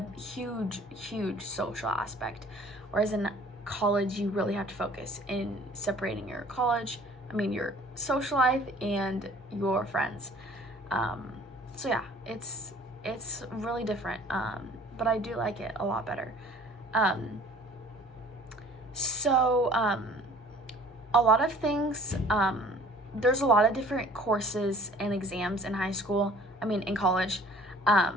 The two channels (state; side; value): normal; both; correlation 0.51